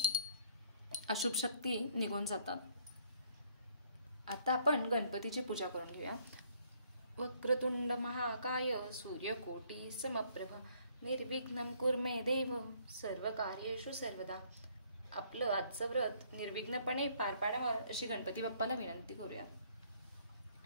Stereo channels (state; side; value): inverted; both; correlation -0.63